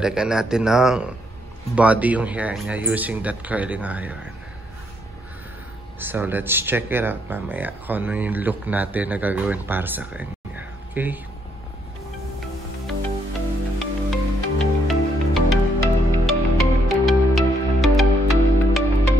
natin ng body yung hair niya using that curling iron. So let's check it out mamaya kung ano yung look natin na gagawin para sa kanya. Okay?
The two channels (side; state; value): both; normal; correlation 0.73